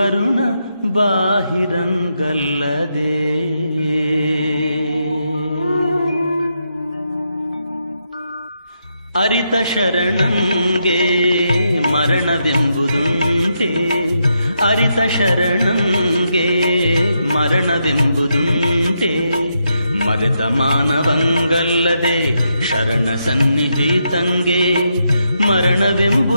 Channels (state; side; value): inverted; both; correlation -0.82